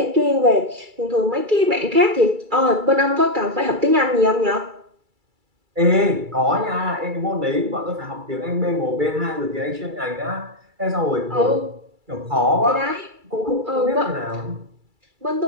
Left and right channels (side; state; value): left; late; 2.3 ms